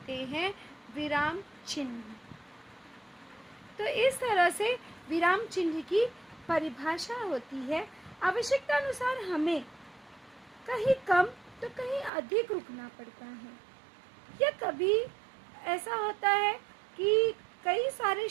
हैं विराम चिन्ह। तो इस तरह से विराम चिन्ह की परिभाषा होती है। आवश्यकता अनुसार हमें कहीं कम तो कहीं अधिक रुकना पड़ता है, या कभी ऐसा होता है कि कई सारे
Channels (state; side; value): drops out; left; at 12.1 s